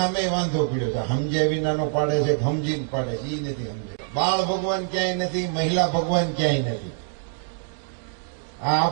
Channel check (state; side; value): silent; left; digital silence